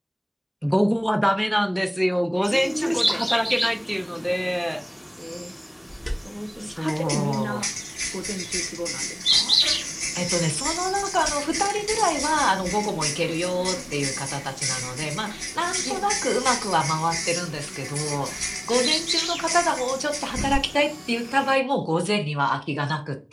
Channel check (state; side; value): identical; both; correlation 1.00